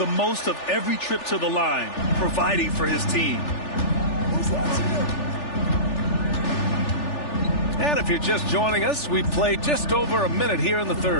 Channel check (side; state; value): right; late; 3.4 ms